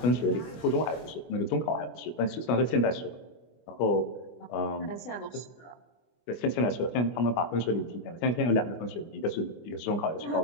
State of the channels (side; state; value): right; late; 24 ms